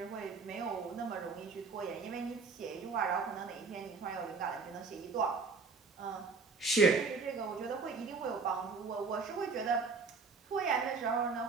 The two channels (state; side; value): quieter; left; 4.7 dB